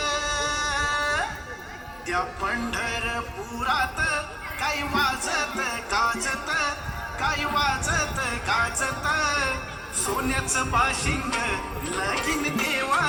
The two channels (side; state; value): both; identical; correlation 1.00